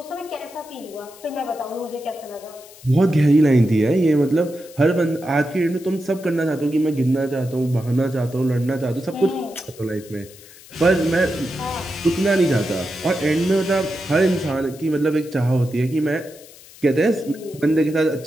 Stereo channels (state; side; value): noise; left; hiss, 21 dB below the sound